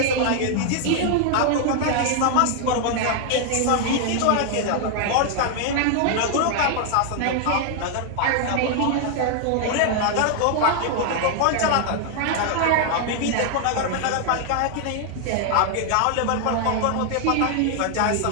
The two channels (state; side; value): different; both; correlation 0.00